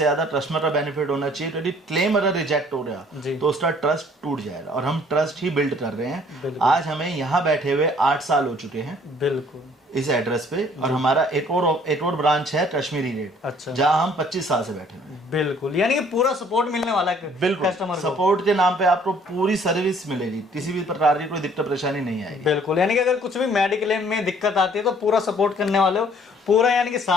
ज्यादा कस्टमर का बेनिफिट होना चाहिए। यदि क्लेम अगर रिजेक्ट हो गया तो उसका ट्रस्ट टूट जाएगा, और हम ट्रस्ट ही बिल्ड कर रहे हैं। आज हमें यहाँ बैठे हुए 8 साल हो चुके हैं। बिल्कुल। इस एड्रेस पे। और हमारा एक और ब्रांच है कश्मीरी रेट। अच्छा। जहाँ हम 25 साल से बैठे हुए हैं। बिल्कुल। यानी कि पूरा सपोर्ट मिलने वाला है। बिल्कुल। कस्टमर सपोर्ट के नाम पे आपको पूरी सर्विस मिलेगी, किसी भी प्रकार की कोई दिक्कत परेशानी नहीं आएगी। बिल्कुल। यानी कि अगर कुछ भी मेडिक्लेम में दिक्कत आती है तो पूरा सपोर्ट करने वाले हो, पूरा यानी कि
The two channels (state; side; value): normal; both; correlation 0.58